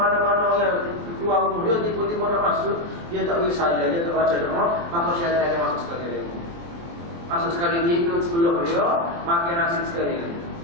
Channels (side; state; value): left; late; 23 ms